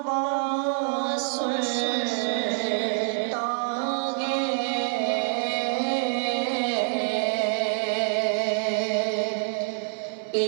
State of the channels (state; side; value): silent; left; digital silence